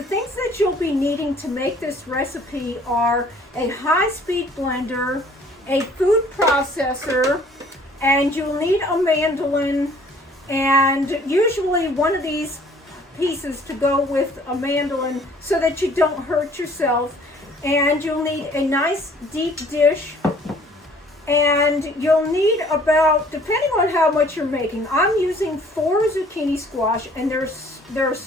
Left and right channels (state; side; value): normal; both; correlation 0.56